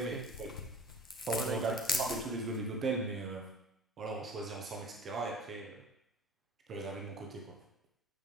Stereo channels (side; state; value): both; normal; correlation 0.41